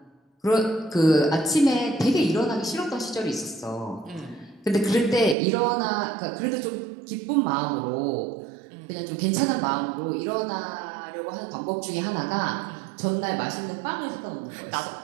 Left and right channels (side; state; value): left; drops out; at 5.4 s